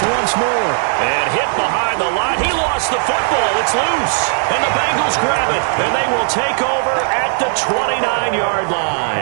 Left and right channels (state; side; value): silent; left; digital silence